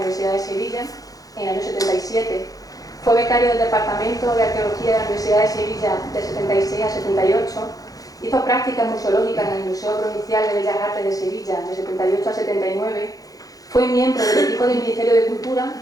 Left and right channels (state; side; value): late; right; 0.17 ms